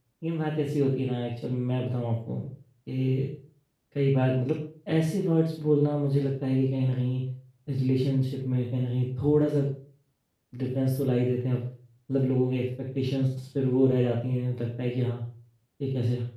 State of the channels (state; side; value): identical; both; correlation 1.00